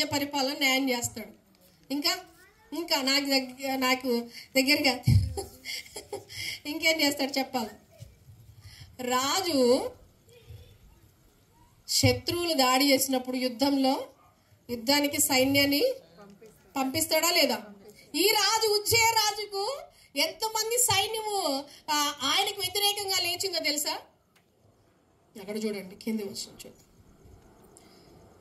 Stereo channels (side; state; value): both; identical; correlation 1.00